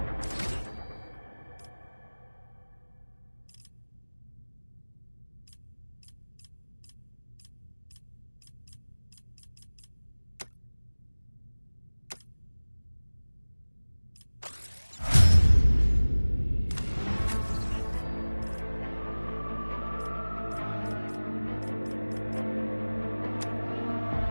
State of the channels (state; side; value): inverted; both; correlation -1.00